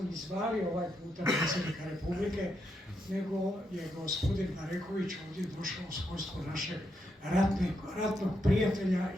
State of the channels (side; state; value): both; normal; correlation 0.81